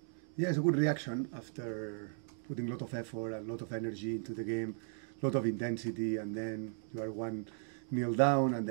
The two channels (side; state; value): left; silent; 53 dB below the other